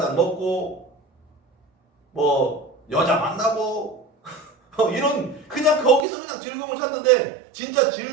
먹고 뭐 여자 만나고 이런 그냥 거기서 그냥 즐거움을 찾는데 진짜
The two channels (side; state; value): left; drops out; at 6.1 s